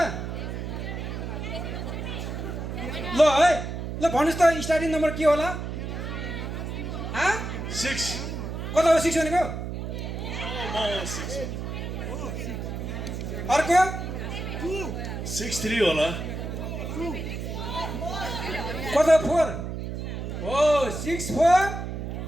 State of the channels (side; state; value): right; noise; hum, 5 dB below the sound